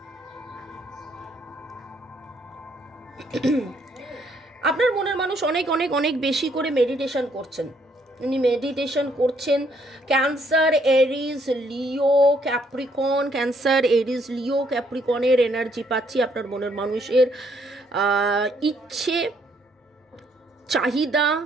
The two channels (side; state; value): both; normal; correlation 0.69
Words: আপনার মনের মানুষ অনেক অনেক অনেক বেশি করে মেডিটেশন করছেন, উনি মেডিটেশন করছেন। ক্যান্সার, এরিজ, লিও, ক্যাপ্রিকন, ক্যান্সার, এরিজ, লিও, ক্যাপ্রিকনের এনার্জি পাচ্ছি। আপনার মনের মানুষের ইচ্ছে, চাহিদা,